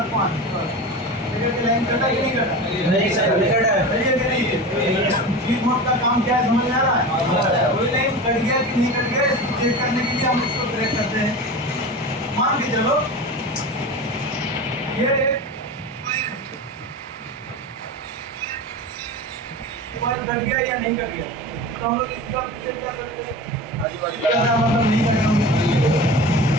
5, देखिए कि लाइन कटा कि नहीं कटा। नहीं सर, नहीं कटा है। सही है कि नहीं है? डीप मोड का काम क्या है समझ में आ रहा है? कोई लाइन कट गया कि नहीं कट गया इसको चेक करने के लिए हम इसको ब्रेक करते हैं। मान के चलो ये मोबाइल कट गया या नहीं कट गया, तो हम लोग इसका चेक कर सकते हैं। मतलब नहीं कट गया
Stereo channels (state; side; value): normal; both; correlation 0.30